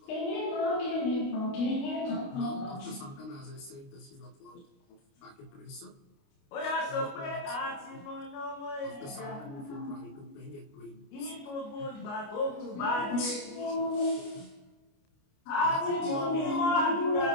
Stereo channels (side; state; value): right; late; 29 ms